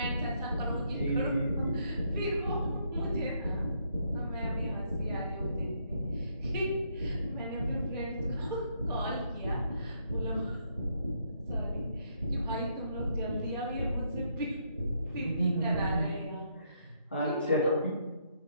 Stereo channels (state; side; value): inverted; both; correlation -0.73